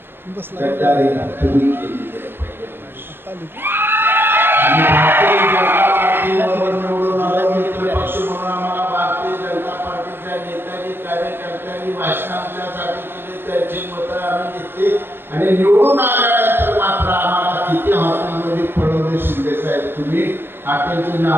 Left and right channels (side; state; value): left; late; 0.10 ms